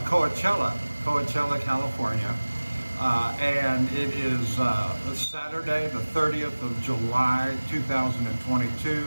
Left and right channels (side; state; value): both; inverted; correlation -1.00